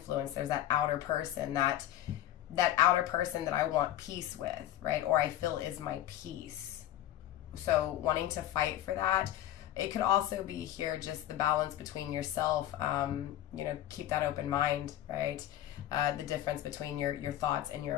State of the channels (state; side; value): quieter; right; 12.8 dB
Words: there's that outer person, that outer person that I want peace with, right? Or I feel is my peace. So wanting to fight for that. It could also be here just the balance between yourself, keep that open mind, right? The difference between your thoughts and your